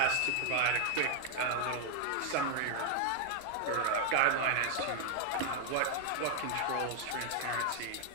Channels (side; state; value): both; different; correlation 0.00